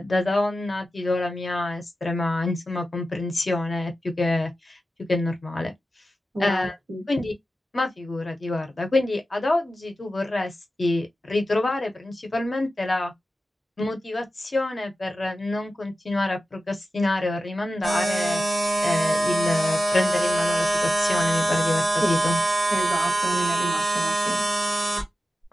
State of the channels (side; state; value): both; normal; correlation 0.92